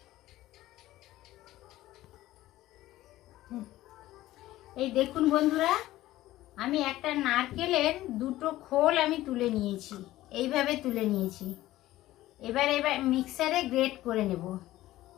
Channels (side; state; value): right; quieter; 15.7 dB